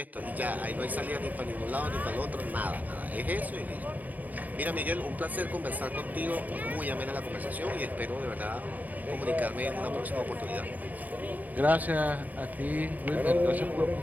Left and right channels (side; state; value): left; late; 0.080 ms